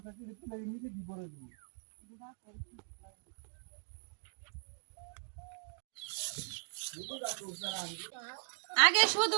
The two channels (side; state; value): left; silent; digital silence